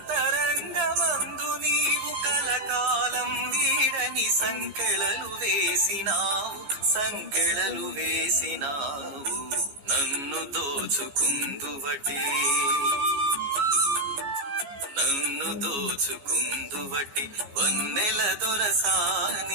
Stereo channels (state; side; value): late; left; 14 ms